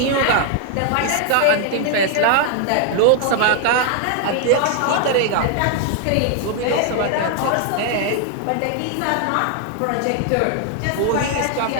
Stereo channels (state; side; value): different; both; correlation 0.00